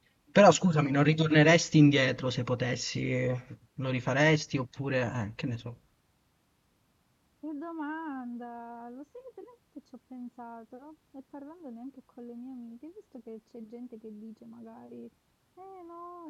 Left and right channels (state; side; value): identical; both; correlation 1.00